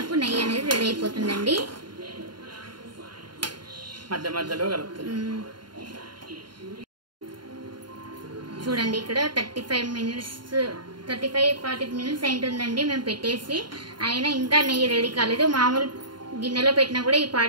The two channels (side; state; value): left; late; 0.72 ms